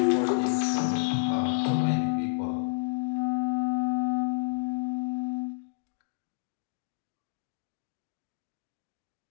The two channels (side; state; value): right; silent; digital silence